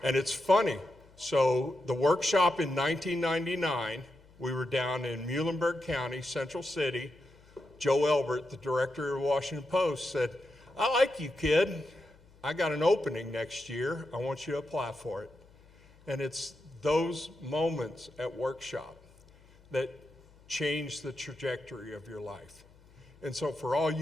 And it's funny, so the workshop in 1999, we were down in Muhlenberg County, Central City. Joe Elbert, the director of the Washington Post, said, "I like you, kid. I got an opening next year. I want you to apply for it." And it's those moments at workshop that change the trajectory of your life. And so for all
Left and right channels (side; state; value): left; noise; hum, 27 dB below the sound